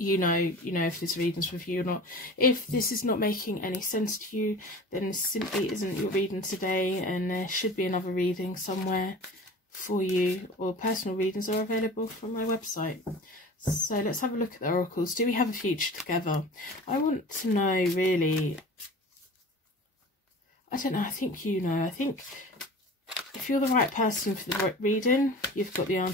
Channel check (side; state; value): both; normal; correlation 0.39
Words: know if this reading's for you or not. If this is not making any sense to you, then this simply isn't your reading today, and there should be another reading somewhere for you, or personal readings are available from my website. So let's have a look at the oracles. Do we have a future together? I want to know, really. I don't know. I think you know. I think if you're the right person for the reading, you've got the